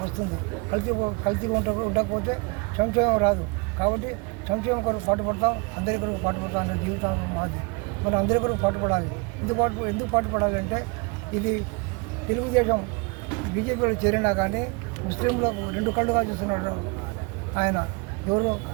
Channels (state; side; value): quieter; left; 30.0 dB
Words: వస్తుంది. కలిసి ఉండకపోతే సంక్షేమం రాదు. కాబట్టి సంక్షేమం కొరకు పాటుపడతాం, అందరి కొరకు పాటుపడతాం అనే జీవితం మాది. మనం అందరి కొరకు పాటుపడాలి. ఎందుకు పాటుపడాలి అంటే ఇది తెలుగుదేశం బీజేపీలో చేరినా కానీ ముస్లింలకు 2 కళ్ళుగా చూస్తున్నాడు ఆయన. ఎవరు?